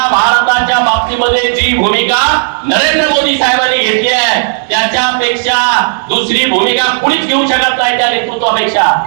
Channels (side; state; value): left; silent; digital silence